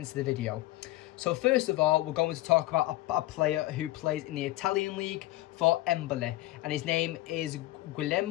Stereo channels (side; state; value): right; quieter; 17.5 dB